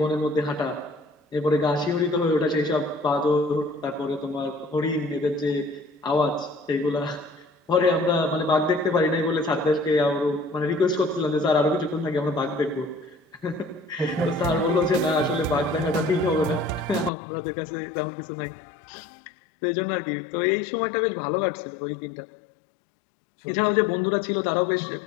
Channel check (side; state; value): right; drops out; at 17.1 s